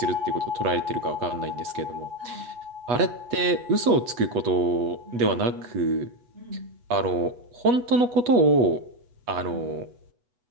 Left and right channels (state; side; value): late; left; 8.2 ms